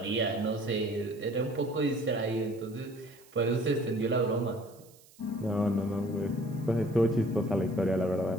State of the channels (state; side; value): noise; right; hiss, 26 dB below the sound